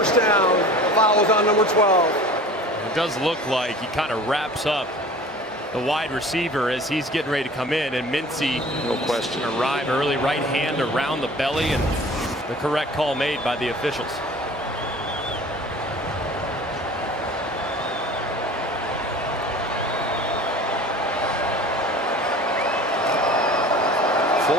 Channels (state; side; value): normal; both; correlation 0.43